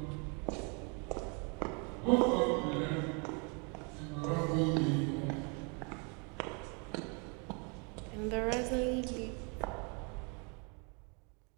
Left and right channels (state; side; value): quieter; left; 34.6 dB